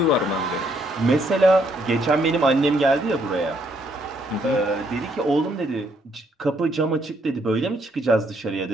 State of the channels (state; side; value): normal; both; correlation 0.71